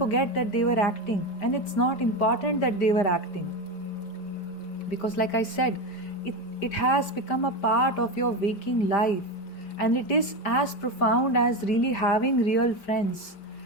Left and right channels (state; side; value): late; right; 5.0 ms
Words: that they were acting, and it's not important that they were acting. Because like I said, it has become a part of your waking life, and it is as profound as really having real friends.